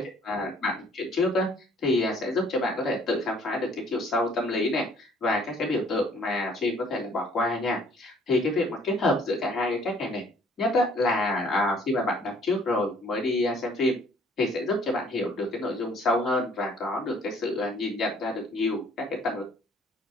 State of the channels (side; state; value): both; normal; correlation 0.58